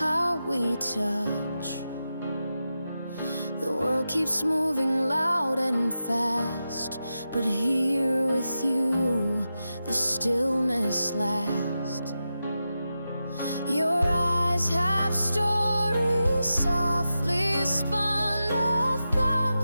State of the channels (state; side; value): inverted; both; correlation -0.91